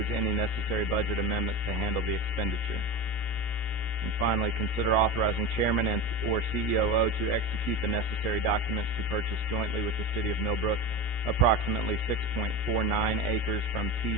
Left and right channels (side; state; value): right; late; 17 ms